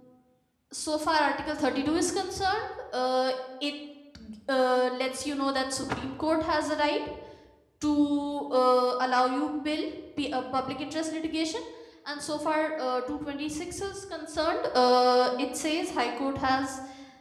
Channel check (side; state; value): both; identical; correlation 1.00